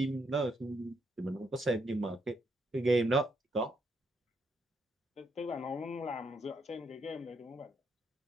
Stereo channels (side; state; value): both; normal; correlation 0.76